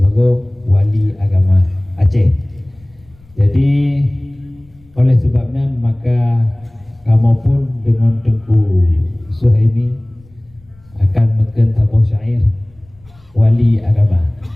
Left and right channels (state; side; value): noise; left; rumble, 28 dB below the sound